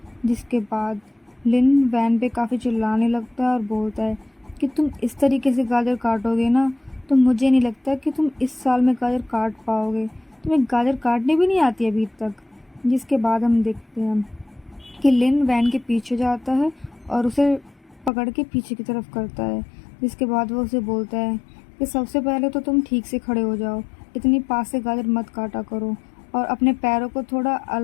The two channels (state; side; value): drops out; right; at 18.1 s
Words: जिसके बाद लिन वैन पे काफ़ी चिल्लाने लगता है और बोलता है कि तुम इस तरीके से गाजर काटोगे ना तो मुझे नहीं लगता कि तुम इस साल में गाजर काट पाओगे, तुम्हें गाजर काटने भी नहीं आती अभी तक। जिसके बाद हम देखते हैं कि लिन वैन के पीछे जाता है और उसे पकड़ के पीछे की तरफ करता है। जिसके बाद वो उसे बोलता है कि सबसे पहले तो तुम ठीक से खड़े हो जाओ, इतनी पास से गाजर मत काटा करो और अपने पैरों को थोड़ा